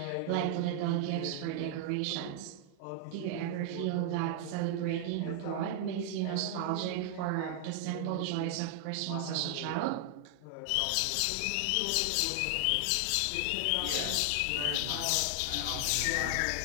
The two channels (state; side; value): different; both; correlation 0.00